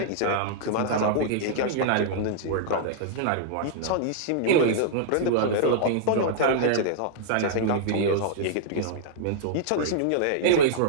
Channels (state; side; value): different; both; correlation -0.02